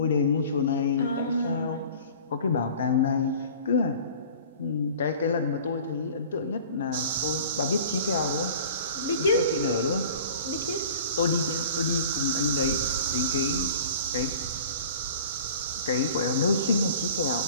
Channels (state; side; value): inverted; both; correlation -0.44